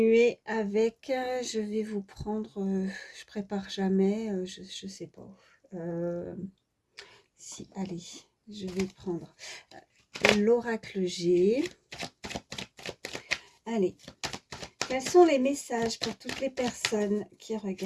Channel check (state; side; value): identical; both; correlation 1.00